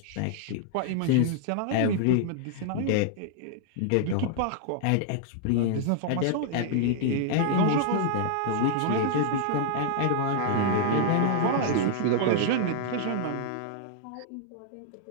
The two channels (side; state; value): both; different; correlation -0.01